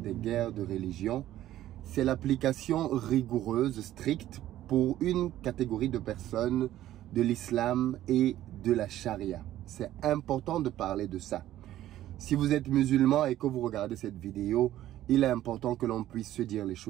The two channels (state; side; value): quieter; left; 13.4 dB